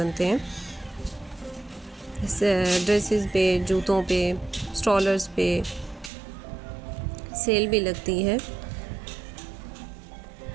हैं। ड्रेसेस पे, जूतों पे, स्ट्रॉलर्स पे सेल भी लगती है।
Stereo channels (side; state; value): left; drops out; at 6.1 s